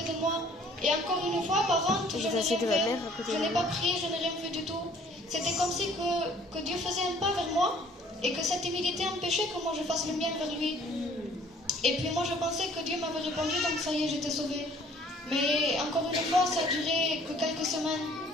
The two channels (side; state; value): both; normal; correlation 0.56